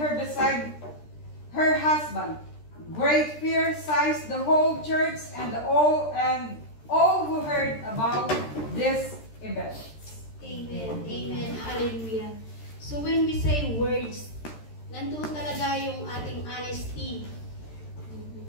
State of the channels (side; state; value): right; late; 13 ms